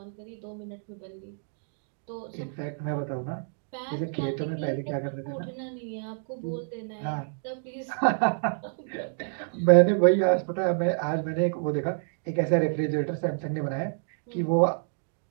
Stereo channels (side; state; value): left; silent; digital silence